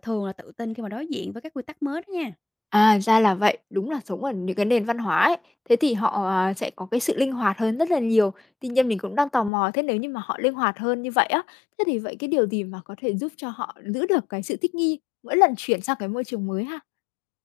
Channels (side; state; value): right; drops out; at 9.5 s